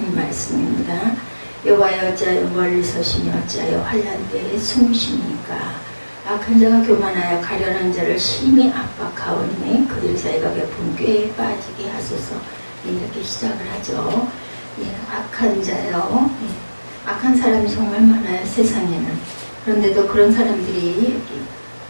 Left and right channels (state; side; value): inverted; both; correlation -1.00